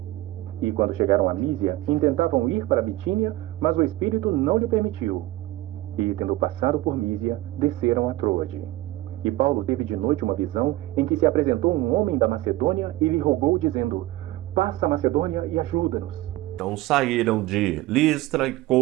E quando chegaram a Mísia, intentavam ir para Bitínia, mas o Espírito não lhe permitiu. E tendo passado por Mísia, desceram a Troade. E Paulo teve de noite uma visão em que se apresentou um homem da Macedônia e lhe rogou, dizendo: passa a Macedônia e ajuda-nos. Então saíram de Listra,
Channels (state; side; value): quieter; left; 17.3 dB